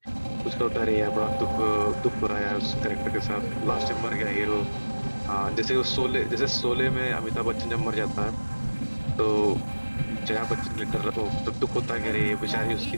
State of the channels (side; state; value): both; inverted; correlation -1.00